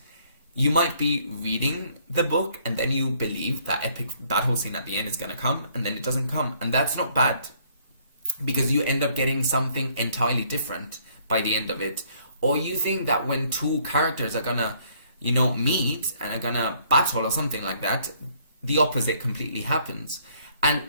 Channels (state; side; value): inverted; both; correlation -0.64